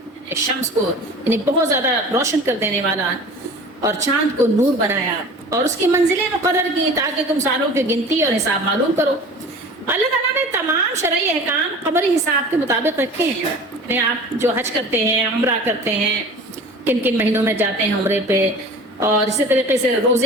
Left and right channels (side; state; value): both; normal; correlation 0.40